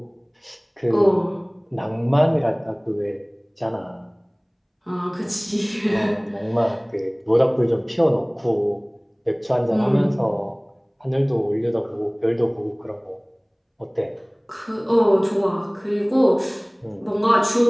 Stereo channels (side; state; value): both; identical; correlation 1.00